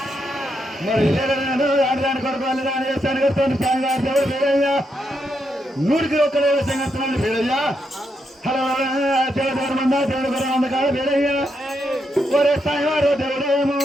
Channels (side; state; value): both; normal; correlation 0.81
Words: ఆడదాని కొరకు వాళ్ళు దాని చేస్తాను కడుతుంది స్వామివారి దేవుడు వీరయ్య 100కి 1 సంగస్తున్నాడు వీరయ్య హలో దేవుడు మంద దేవుడు గురం అందకాడు వీరయ్య ఒరే స్వామివారు దేవుడేమో